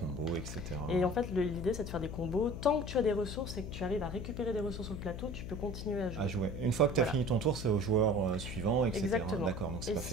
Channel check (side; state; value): left; noise; hum, 7 dB below the sound